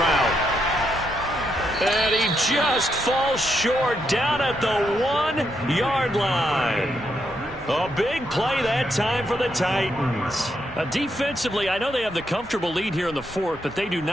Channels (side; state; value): both; normal; correlation 0.79